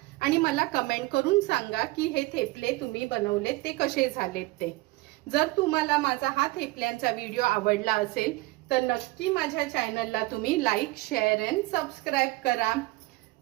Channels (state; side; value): quieter; left; 21.1 dB